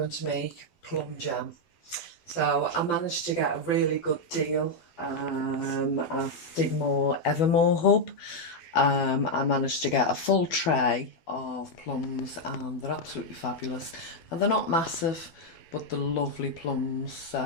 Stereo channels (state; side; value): late; right; 12 ms